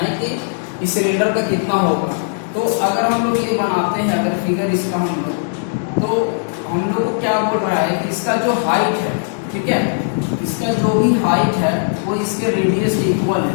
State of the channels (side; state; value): right; silent; 67 dB below the other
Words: कि इस सिलेंडर का कितना होगा। तो अगर हम लोग ये बनाते हैं, अगर फिगर इसका हम लोग, तो हम लोग को क्या बोल रहा है कि इसका जो हाइट है, ठीक है, इसका जो भी हाइट है वो इसके रेडियस के इक्वल